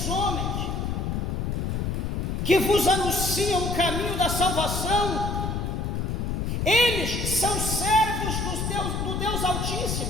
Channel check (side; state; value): left; noise; rumble, 1 dB below the sound